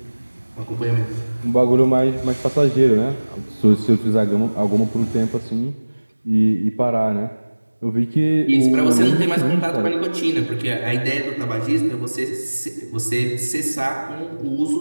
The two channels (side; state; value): both; inverted; correlation -1.00